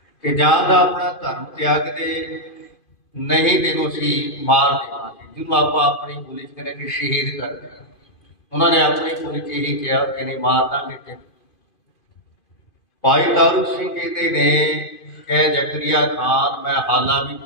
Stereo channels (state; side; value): late; right; 2.5 ms